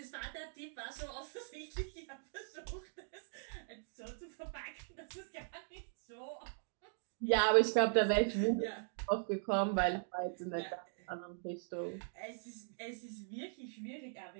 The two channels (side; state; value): left; silent; digital silence